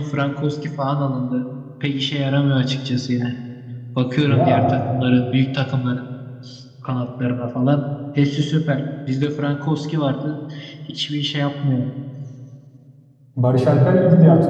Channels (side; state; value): both; identical; correlation 1.00